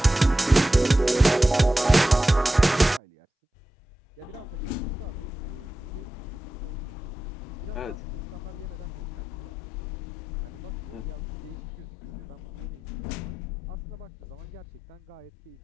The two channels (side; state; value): both; normal; correlation 0.93